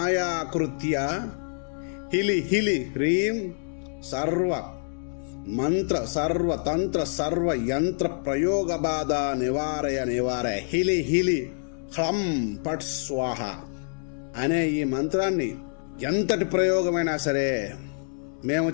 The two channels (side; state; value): right; silent; digital silence